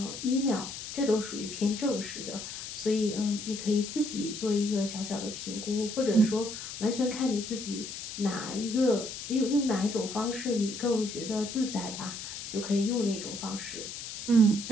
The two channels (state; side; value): noise; left; hiss, 8 dB below the sound